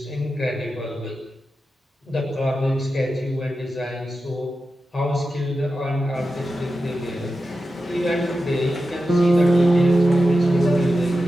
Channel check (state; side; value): normal; both; correlation 0.91